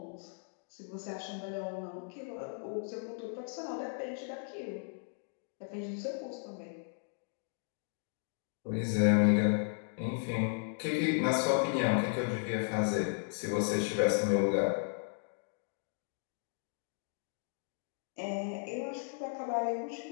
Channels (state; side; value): silent; right; digital silence